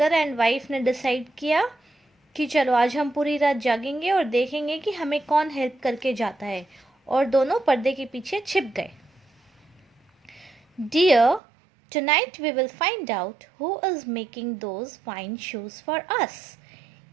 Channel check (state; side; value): drops out; left; at 11.4 s